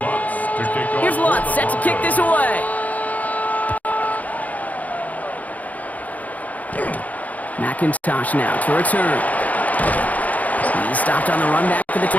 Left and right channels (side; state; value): right; late; 0.075 ms